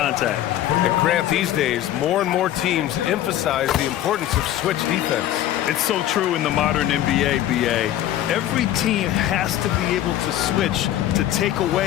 And Grant, these days, more and more teams emphasize the importance of switch defense. It's so true in the modern NBA, BA. Every team has to be able to switch to take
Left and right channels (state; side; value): quieter; right; 12.6 dB